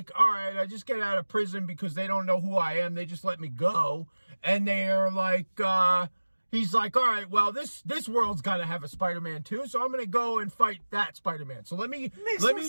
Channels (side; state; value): both; inverted; correlation -1.00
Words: all right, I just get out of prison because they don't know who I am. They just let me go. And they're like, he's like, all right, well, this world's got to have a Spider-Man too. So I'm going to go and fight that Spider-Man. So let me